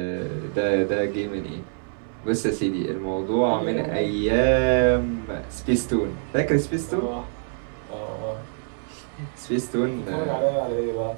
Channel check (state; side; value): silent; left; 62 dB below the other